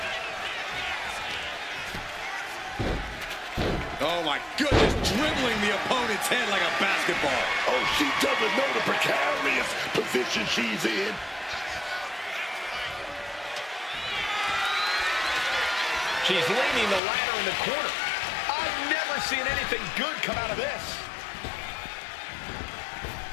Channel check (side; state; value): right; drops out; at 17.0 s